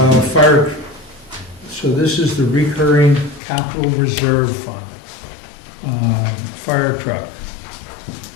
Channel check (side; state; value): right; drops out; at 3.4 s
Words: Fire, so this is the recurring capital reserve fund. Fire truck,